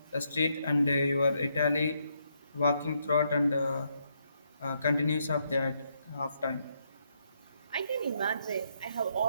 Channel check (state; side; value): inverted; both; correlation -0.76